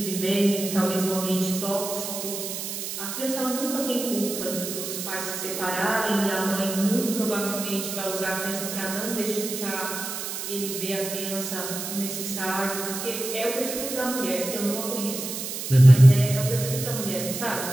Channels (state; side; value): noise; right; hiss, 6 dB below the sound